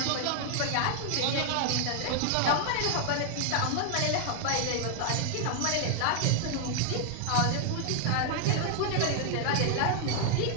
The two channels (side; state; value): both; different; correlation 0.00